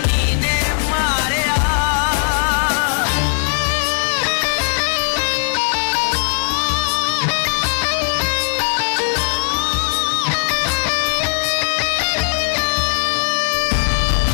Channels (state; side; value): silent; right; digital silence